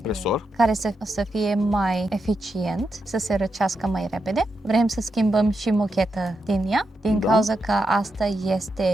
care să fie mai eficient, să se răcească mai repede. Vrem să schimbăm și mocheta din ea, din Da. cauza că asta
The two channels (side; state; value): both; normal; correlation 0.85